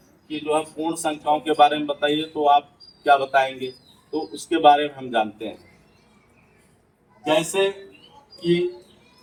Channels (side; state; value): both; identical; correlation 1.00